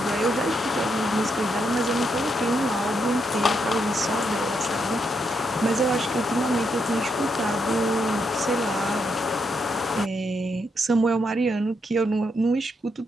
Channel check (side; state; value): both; normal; correlation 0.79